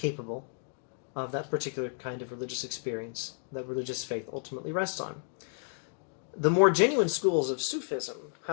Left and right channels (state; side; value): silent; right; 57 dB below the other